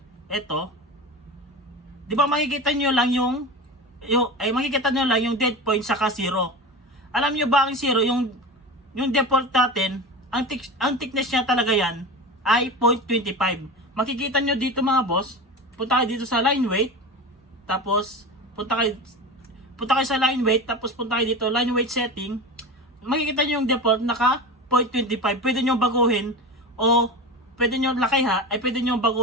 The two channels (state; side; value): normal; both; correlation 0.27